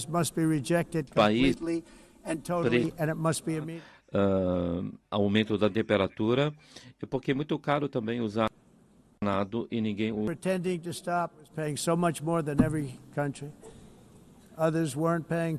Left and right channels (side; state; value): both; identical; correlation 1.00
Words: must be rejected completely and totally, and it must be immediate. Aumento da temperatura, porque é muito caro também usar nada e ninguém usa. Pretending to stop is paying so much more than every country. Others weren't paying.